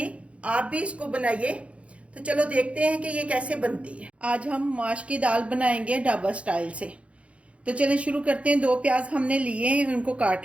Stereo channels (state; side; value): late; left; 0.062 ms